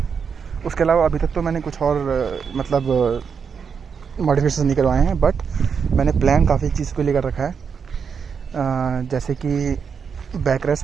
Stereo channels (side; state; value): left; quieter; 6.3 dB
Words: अलावा अभी तक तो मैंने कुछ और मतलब मॉडिफिकेशन नहीं करवाए हैं, बट मैंने प्लान काफ़ी चीज़ को लेकर रखा है। जैसे कि बैक